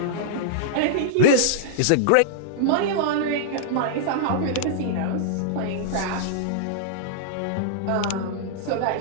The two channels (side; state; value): both; different; correlation -0.02